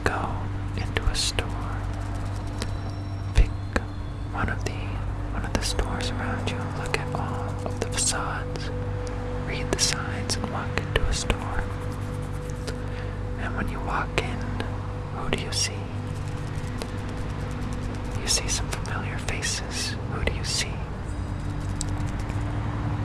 go into a store. Pick one of the stores around you, look at all of the facades, read the signs, and walk into a store. And when you walk in, who do you see? You see some familiar faces. Who do you see?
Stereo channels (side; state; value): both; identical; correlation 1.00